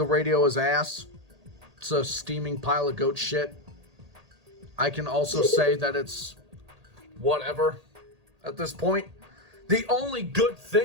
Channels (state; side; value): late; left; 1.8 ms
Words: radio is ass. It's a steaming pile of goat shit. I can also say that it's whatever at this point. The only good